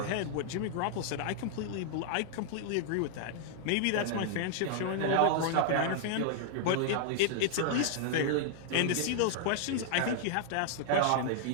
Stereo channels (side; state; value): both; different; correlation -0.01